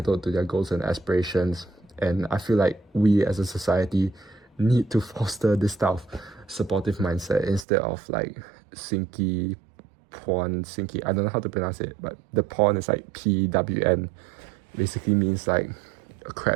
to their goals and aspirations. And I feel like we as a society need to foster this type of supportive mindset instead of like sinky, I don't know how to pronounce it, but the porn is like PWN, basically means like a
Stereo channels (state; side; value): drops out; left; at 7.7 s